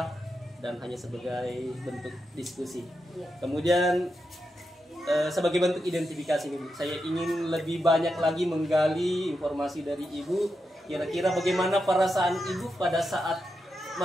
dan hanya sebagai bentuk diskusi. Kemudian sebagai bentuk identifikasi ini, saya ingin lebih banyak lagi menggali informasi dari Ibu. Kira-kira bagaimana perasaan Ibu pada saat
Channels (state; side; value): normal; both; correlation 0.87